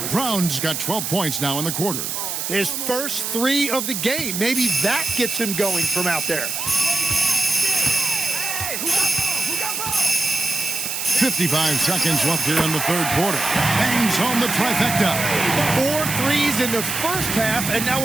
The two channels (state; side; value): noise; right; hiss, 3 dB below the sound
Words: Brown's got 12 points now in the quarter. His first 3 of the game. Maybe that gets him going from out there. 55 seconds left here in the third quarter. Bangs home the trifecta. 4 threes in the first half, and